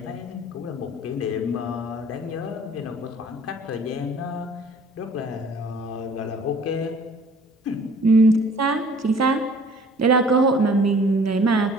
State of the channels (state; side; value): normal; both; correlation 0.52